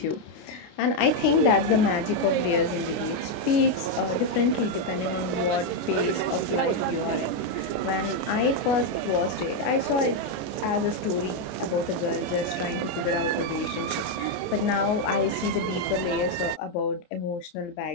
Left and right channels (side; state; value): right; late; 29 ms